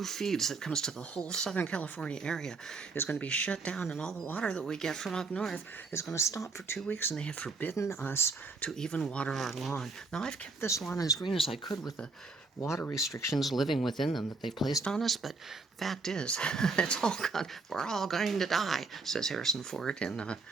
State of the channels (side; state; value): left; quieter; 3.9 dB